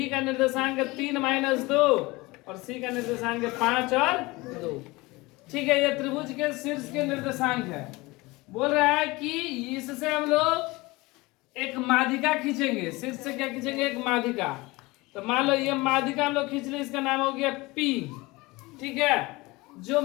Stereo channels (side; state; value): right; quieter; 22.4 dB